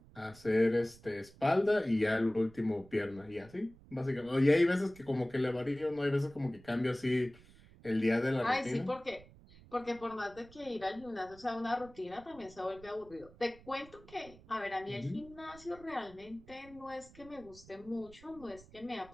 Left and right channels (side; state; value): right; noise; rumble, 22 dB below the sound